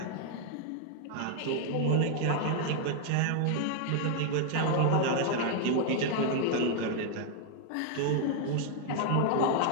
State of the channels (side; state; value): both; different; correlation 0.00